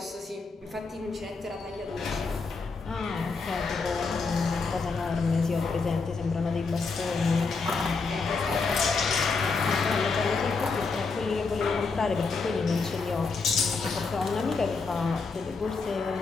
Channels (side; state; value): right; quieter; 4.4 dB